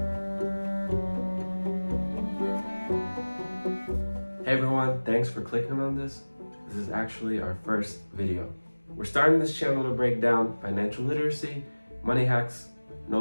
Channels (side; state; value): both; inverted; correlation -1.00